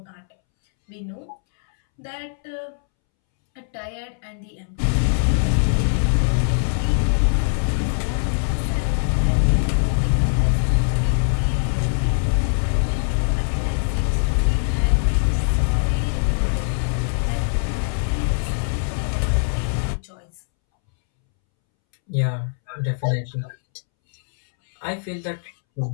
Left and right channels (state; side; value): silent; right; 64 dB below the other